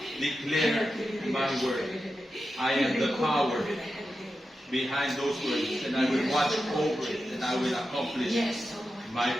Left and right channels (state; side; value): normal; both; correlation 0.90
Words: Declare my word. I am the power behind those words, and I will watch over it, and I will accomplish my